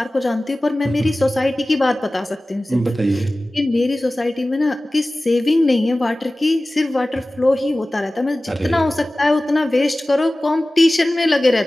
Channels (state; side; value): normal; both; correlation 0.97